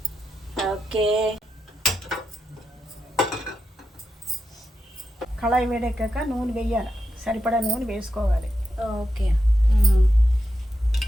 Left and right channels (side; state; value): both; normal; correlation 0.87